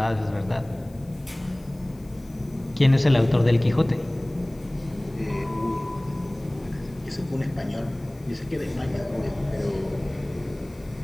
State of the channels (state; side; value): noise; left; hiss, 28 dB below the sound